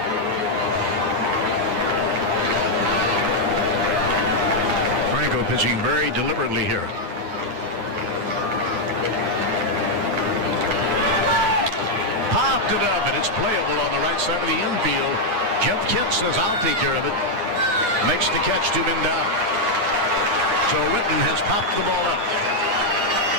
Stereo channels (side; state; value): left; late; 9.8 ms